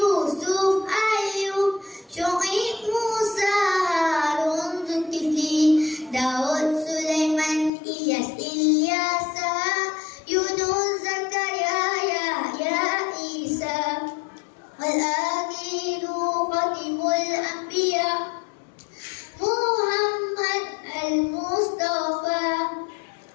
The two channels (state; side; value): drops out; right; at 7.7 s